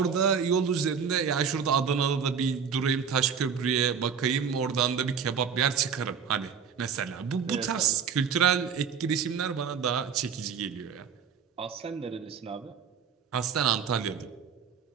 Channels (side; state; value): left; quieter; 6.8 dB